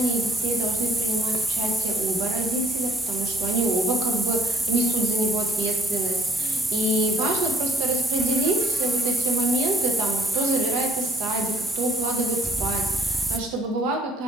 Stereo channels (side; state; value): both; normal; correlation 0.63